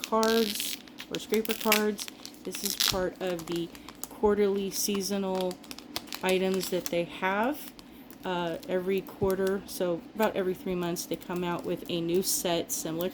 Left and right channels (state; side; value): identical; both; correlation 1.00